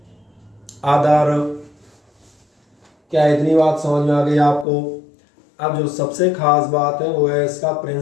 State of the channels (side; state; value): right; drops out; at 4.7 s